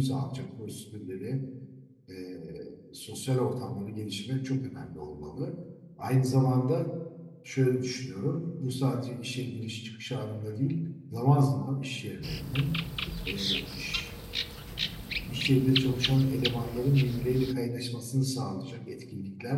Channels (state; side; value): identical; both; correlation 1.00